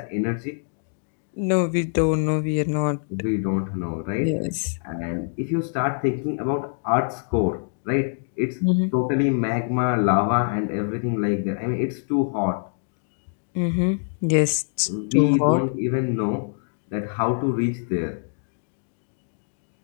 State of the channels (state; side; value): silent; right; digital silence